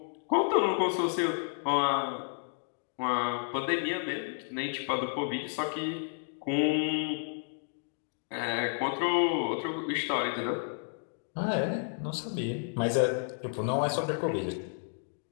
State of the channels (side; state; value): right; silent; digital silence